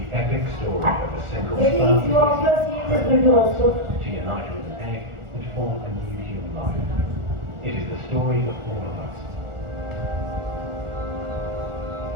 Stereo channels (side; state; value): left; late; 1.4 ms